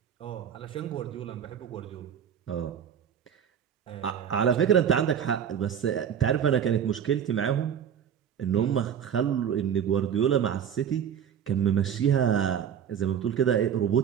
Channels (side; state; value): left; quieter; 8.5 dB